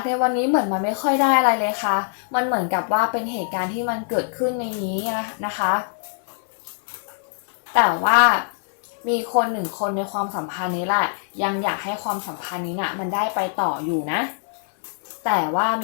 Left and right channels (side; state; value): right; silent; digital silence